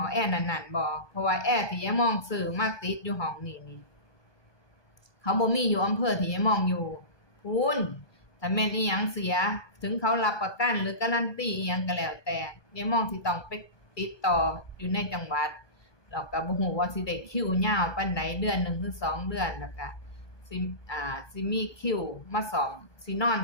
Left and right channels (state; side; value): late; right; 1.2 ms